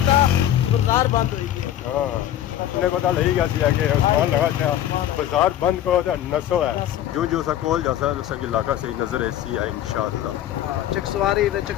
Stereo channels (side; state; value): right; quieter; 11.9 dB